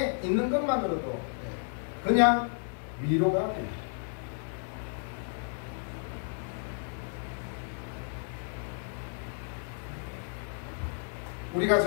있는 것만으로도 그냥 위로가 됩니다. 우리가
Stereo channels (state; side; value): silent; right; 56 dB below the other